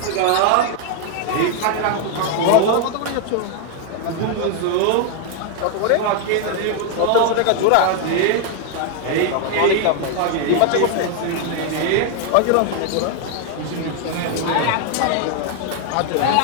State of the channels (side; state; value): both; different; correlation 0.00